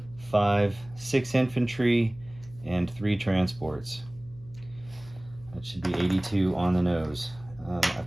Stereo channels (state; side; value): noise; left; hum, 20 dB below the sound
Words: 5, 6 infantry, and 3 transports. That should be 82 on the nose. I've